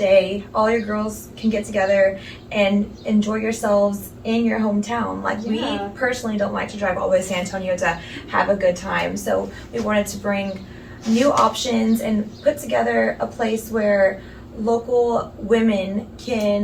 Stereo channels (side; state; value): both; identical; correlation 1.00